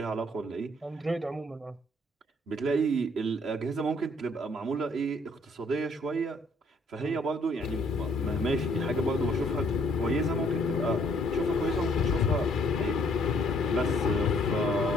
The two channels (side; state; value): both; normal; correlation 0.64